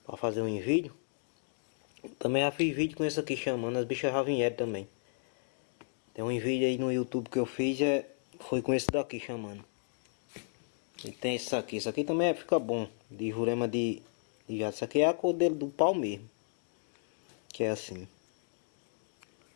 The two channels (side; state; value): right; silent; digital silence